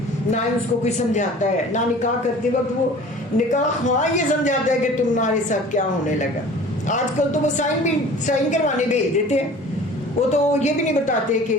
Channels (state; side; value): normal; both; correlation 0.45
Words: نہ ہی اس کو کوئی سمجھاتا ہے, نہ نکاح کرتے وقت وہ نکاح ہاں یہ سمجھاتا ہے کہ تمہارے ساتھ کیا ہونے لگا. آج کل تو وہ سائن کروانے بھیج دیتے ہیں, وہ تو یہ بھی نہیں بتاتے